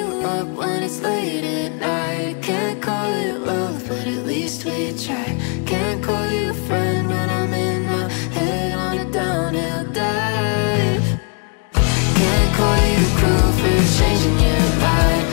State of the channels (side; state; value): right; quieter; 38.1 dB